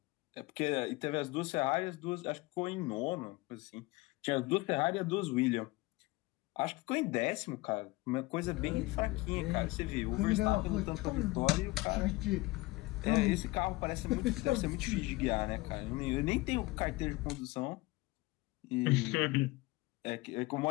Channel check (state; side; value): quieter; right; 21.2 dB